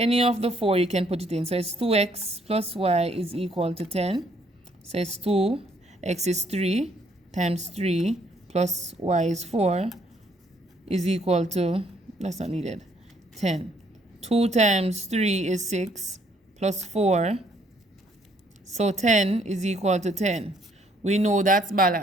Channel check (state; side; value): normal; both; correlation 0.67